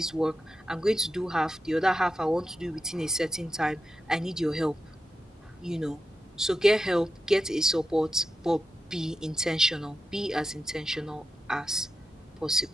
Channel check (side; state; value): both; normal; correlation 0.89